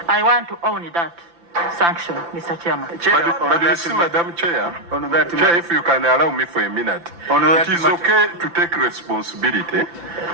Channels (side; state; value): left; late; 5.9 ms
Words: I want to own that sanction, Mr. Chairman. But you see, Madam Chair, Chair, if you can allow me for a minute, it is okay to take responsibility